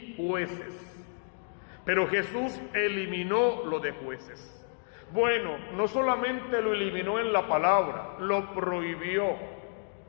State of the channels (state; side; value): silent; right; 57 dB below the other